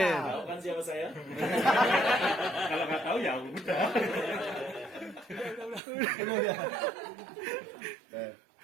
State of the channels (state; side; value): drops out; left; at 5.8 s